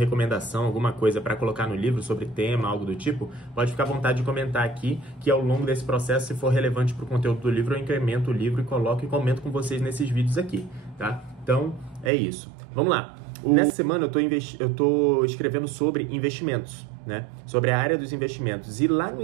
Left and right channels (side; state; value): left; drops out; at 12.1 s